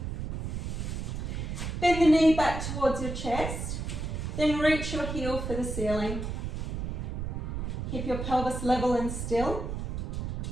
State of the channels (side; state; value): right; noise; rumble, 4 dB below the sound